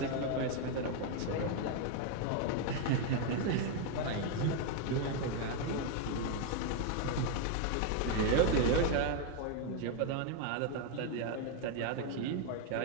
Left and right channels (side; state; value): both; different; correlation 0.01